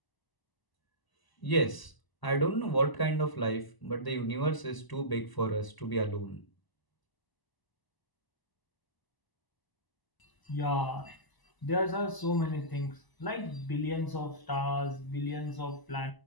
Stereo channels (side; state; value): right; late; 1.0 ms